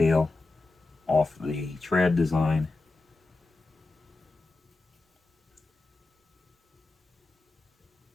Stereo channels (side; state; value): right; quieter; 3.4 dB